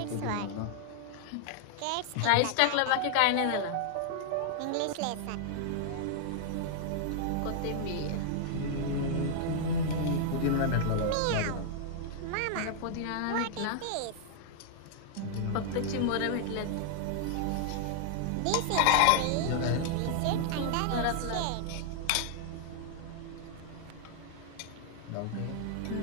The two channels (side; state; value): both; different; correlation 0.00